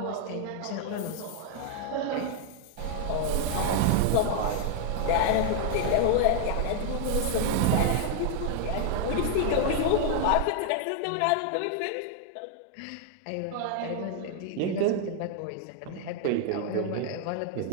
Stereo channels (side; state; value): both; different; correlation 0.00